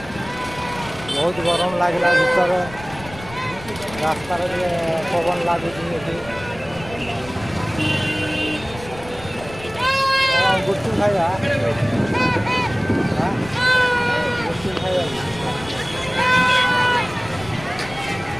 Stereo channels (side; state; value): left; noise; rumble, 16 dB below the sound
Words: बहुत गरम लगला भीतर रास्ता पवन लगुच गुटू खाइबा गुटू खाइबा